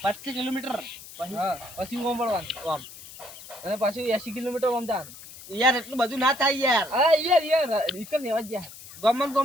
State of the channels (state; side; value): noise; left; hiss, 16 dB below the sound